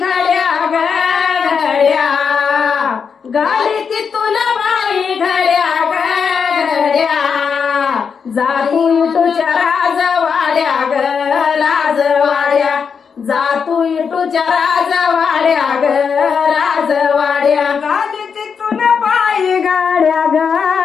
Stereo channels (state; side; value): quieter; right; 6.2 dB